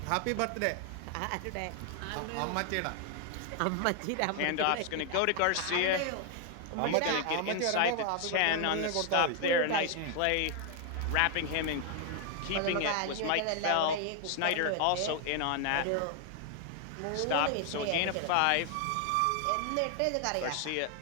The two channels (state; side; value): different; both; correlation 0.00